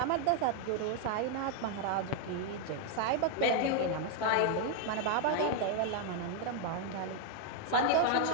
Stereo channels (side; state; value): both; different; correlation 0.00